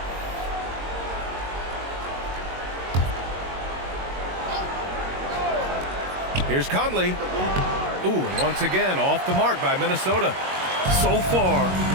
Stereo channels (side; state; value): left; late; 22 ms